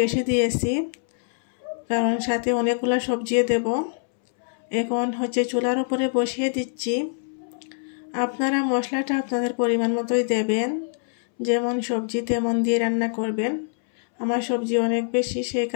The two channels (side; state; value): right; silent; 62 dB below the other